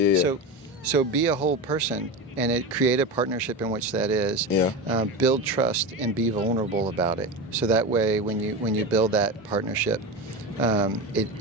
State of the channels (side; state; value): both; normal; correlation 0.22